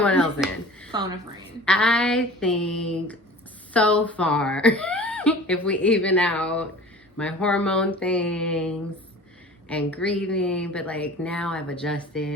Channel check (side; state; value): both; normal; correlation 0.42